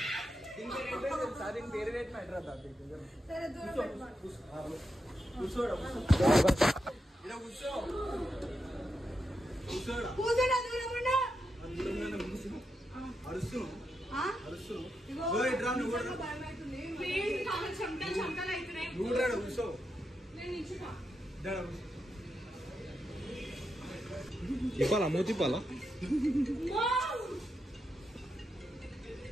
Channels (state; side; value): normal; both; correlation 0.85